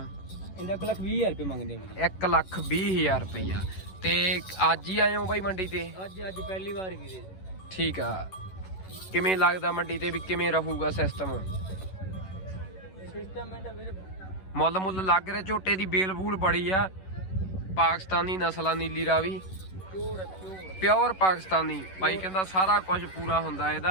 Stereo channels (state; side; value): late; right; 11 ms